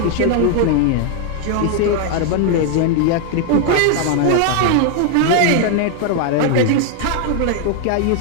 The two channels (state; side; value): different; both; correlation 0.00